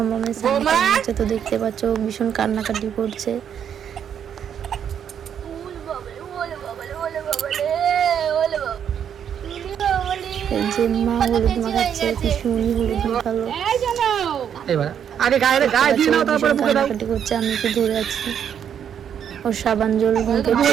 সামনে হচ্ছে, তো দেখতে পাচ্ছ ও ভীষণ কান্নাকাটি করছে। এই যে মা হলুদ মাখাচ্ছে, ভীষণই হলুদ মাখালো। এবার আগে গায়ে দিয়ে নাও, তারপরে মুখে দাও। কান্নাকাটি করছে, আমি কি ধরে আছি। ওর সাবান জল মুখে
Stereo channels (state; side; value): quieter; left; 8.6 dB